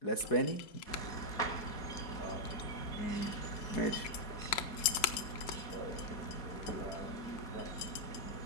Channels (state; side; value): late; right; 5.4 ms